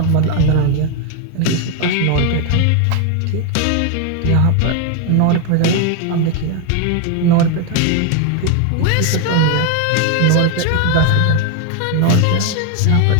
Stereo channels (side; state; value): both; different; correlation 0.01